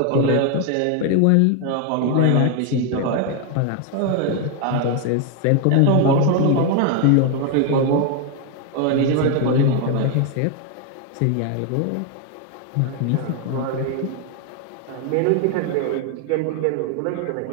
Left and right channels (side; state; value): both; different; correlation 0.01